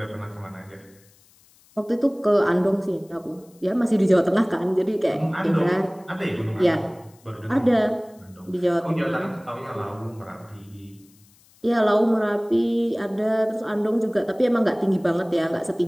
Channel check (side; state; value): left; noise; hiss, 30 dB below the sound